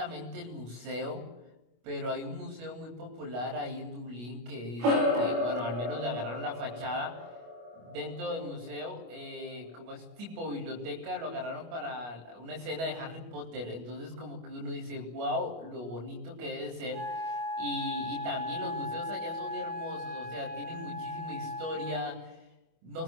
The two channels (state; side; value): late; left; 25 ms